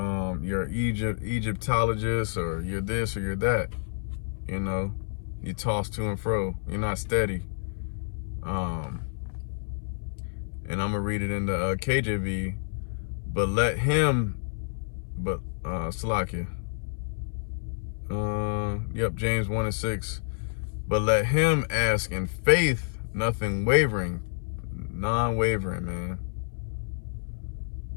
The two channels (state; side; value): silent; right; 59 dB below the other